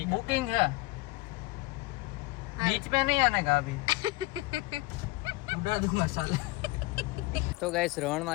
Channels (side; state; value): right; quieter; 21.0 dB